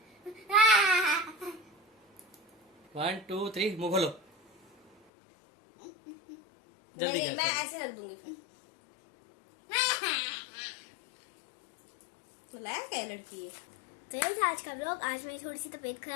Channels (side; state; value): right; drops out; at 4.9 s